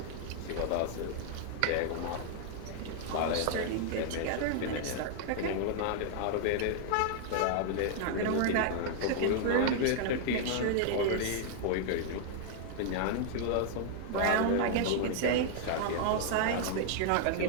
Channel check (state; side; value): different; both; correlation -0.01